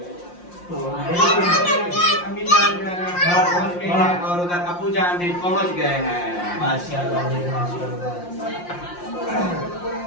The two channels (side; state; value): right; late; 5.7 ms